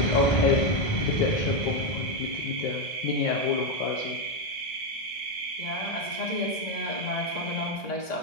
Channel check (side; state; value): right; late; 2.0 ms